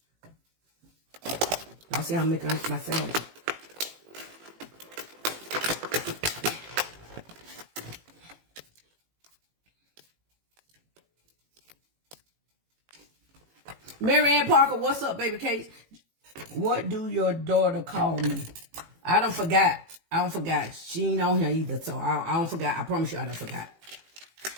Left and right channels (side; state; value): left; late; 18 ms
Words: Y'all see how I'm making my sandwich. Mary Ann Parker, what's up, baby Case? What do your daughter call me? I don't forgot. I don't forgot. She ain't on here either, so I don't forgot. I promise you I don't forgot.